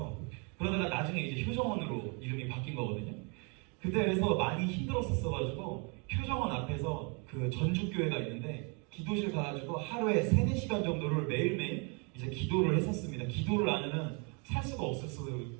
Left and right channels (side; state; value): left; quieter; 34.5 dB